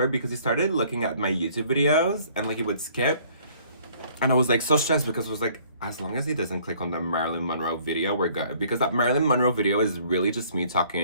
because he started looking at my YouTube videos and like he would skip. And I was like so stressed because it was like, as long as he doesn't click on the Marilyn Monroe video, we're good. Because that Marilyn Monroe video is really just me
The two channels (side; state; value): both; inverted; correlation -0.58